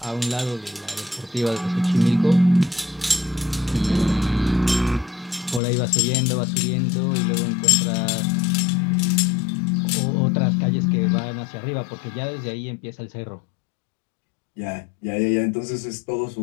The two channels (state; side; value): drops out; right; at 5.6 s